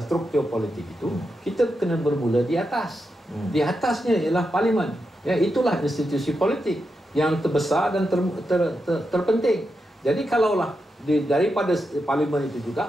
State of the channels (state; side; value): normal; both; correlation 0.86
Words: struktur politik itu, kita kena bermula di atas. Di atasnya ialah Parlimen. Itulah institusi politik yang terbesar dan terpenting. Jadi kalaulah daripada Parlimen itu